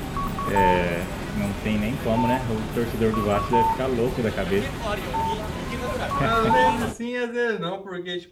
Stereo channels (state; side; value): identical; both; correlation 1.00